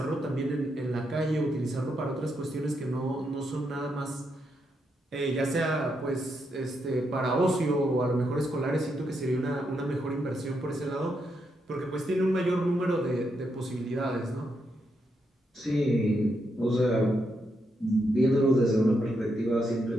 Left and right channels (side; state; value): both; normal; correlation 0.81